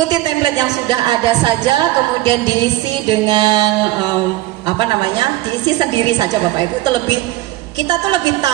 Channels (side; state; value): left; quieter; 16.8 dB